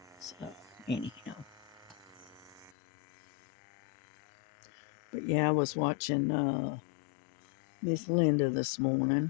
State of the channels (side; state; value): right; drops out; at 2.7 s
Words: So anyhow, but yeah, I was watching Miss Linda this morning,